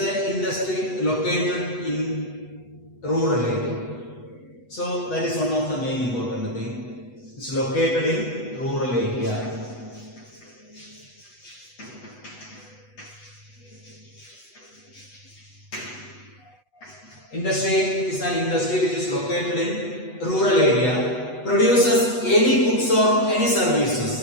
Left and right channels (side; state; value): right; late; 8.1 ms